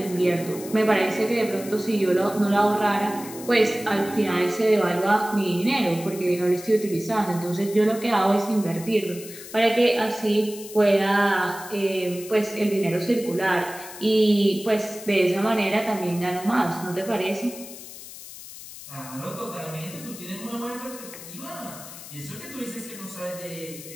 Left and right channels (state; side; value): noise; left; hiss, 14 dB below the sound